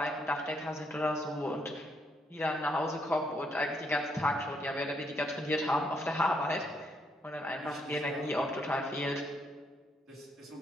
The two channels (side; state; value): both; normal; correlation 0.74